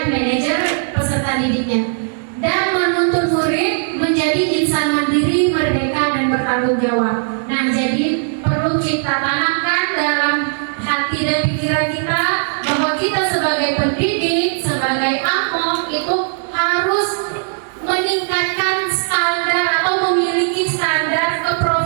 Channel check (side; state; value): left; silent; digital silence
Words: manajer peserta didiknya, dan menuntun murid menjadi insan mandiri, merdeka, dan bertanggung jawab. Nah, jadi perlu kita tanamkan dalam hati dan pikiran kita bahwa kita sebagai pendidik, sebagai among itu harus meningkatkan standar atau memiliki standar